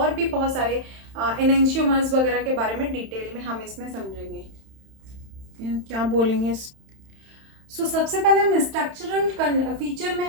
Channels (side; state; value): left; late; 31 ms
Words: भी बहुत सारे एनेंशियोमर्स वगैरह के बारे में डिटेल में हम इसमें समझेंगे। क्या बोलेंगे? सबसे पहले हम स्ट्रक्चरल फीचर में